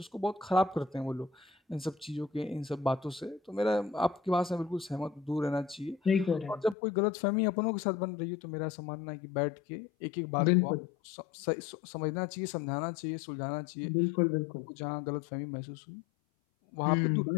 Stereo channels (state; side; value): drops out; right; at 6.8 s